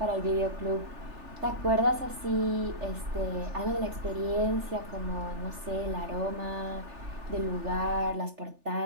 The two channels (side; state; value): left; late; 3.4 ms